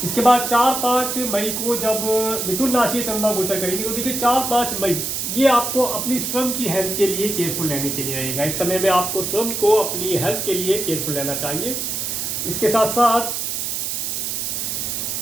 इसके बाद 4-5 मई को जब मिथुन राशि चंद्रमा गोचर करेंगे तो देखिए 4-5 मई ये आपको अपनी स्वयं की हेल्थ के लिए केयरफुल रहने के लिए रहेगा। इस समय में आपको स्वयं को अपनी हेल्थ के लिए केयरफुल रहना चाहिए। इसके साथ साथ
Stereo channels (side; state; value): right; noise; hiss, 2 dB below the sound